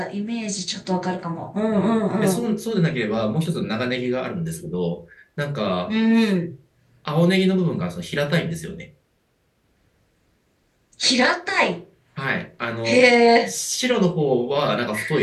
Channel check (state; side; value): identical; both; correlation 1.00